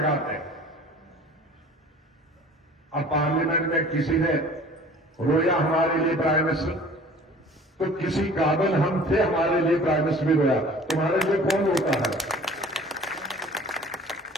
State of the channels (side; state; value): both; normal; correlation 0.47